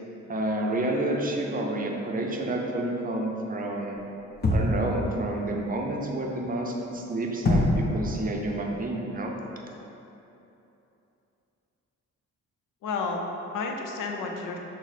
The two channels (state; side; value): normal; both; correlation 0.48